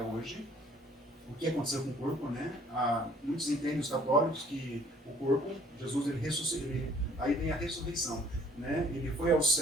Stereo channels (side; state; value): both; normal; correlation 0.58